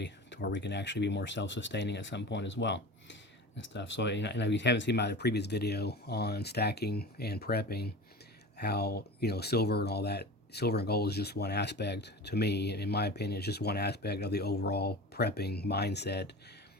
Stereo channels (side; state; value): both; normal; correlation 0.33